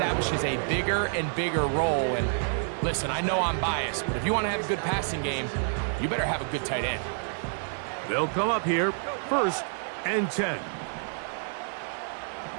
a bigger and bigger role. And listen, I know I'm biased, but if you want to have a good passing game, you better have a good tight end. They'll come up here, 1st and 10.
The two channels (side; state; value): left; silent; 59 dB below the other